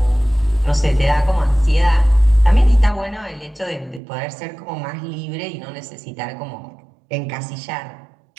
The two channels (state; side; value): drops out; left; at 4.0 s